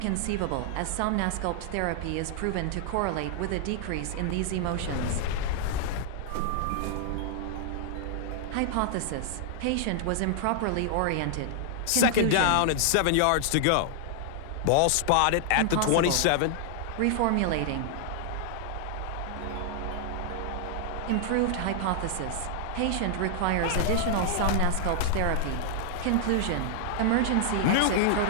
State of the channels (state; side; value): different; both; correlation -0.01